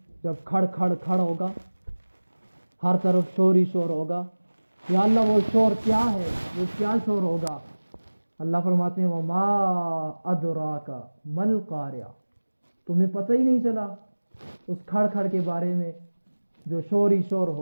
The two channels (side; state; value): both; inverted; correlation -1.00